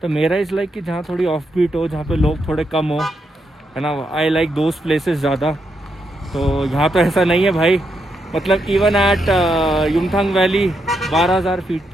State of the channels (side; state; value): both; normal; correlation 0.81